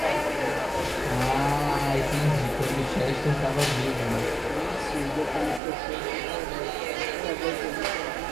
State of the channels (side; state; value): left; drops out; at 5.6 s